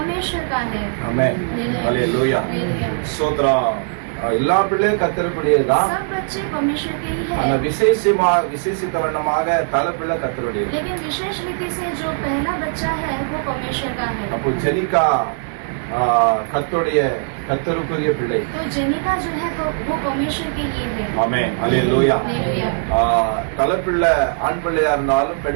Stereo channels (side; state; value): left; silent; digital silence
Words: का है। ஆமென். ஹalleluya. हालेलुया। சோத்ரம். எல்லா பிள்ளையும் கர்த்தருக்குரியதுதான். सब बच्चे परमेश्वर के ही ஆனா है। விசேஷித்த வண்ணமாக தலைப்பிள்ளை கர்த்தருடையது. लेकिन विशेष रीति से जो पहला बच्चा है वो परमेश्वर का है। அப்போ ஜெனிகா கர்த்தருக்குரிய பிள்ளை. तो जेनिका जो है वो परमेश्वर के लिए है। ஆமென். ஹalleluya. हालेलुया। தலைப்பிள்ளை ஆண் பிள்ளையா இருந்தாலும்